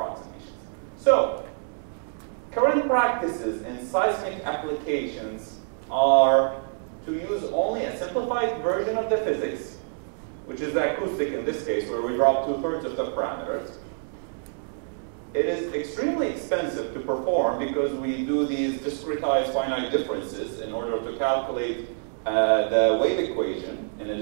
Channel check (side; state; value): left; silent; digital silence